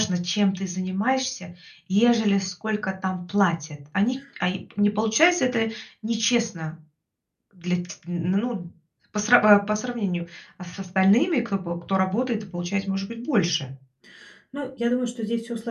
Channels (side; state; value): both; identical; correlation 1.00